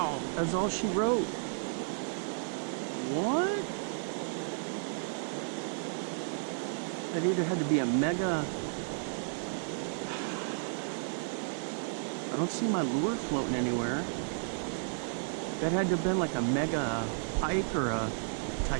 That's all she wrote. What? That either had to be a mega... I don't see my lure floating anywhere. That had to have been like a mega pike or a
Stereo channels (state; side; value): silent; left; digital silence